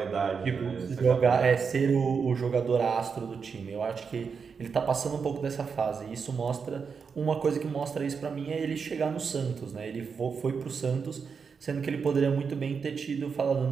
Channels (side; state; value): left; quieter; 5.8 dB